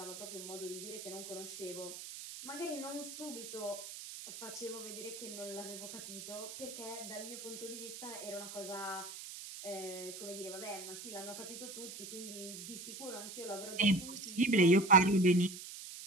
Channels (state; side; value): noise; right; hiss, 10 dB below the sound